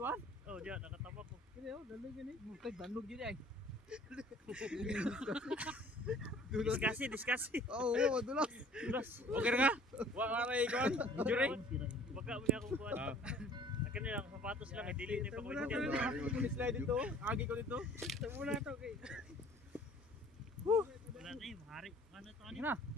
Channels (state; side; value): normal; both; correlation 0.52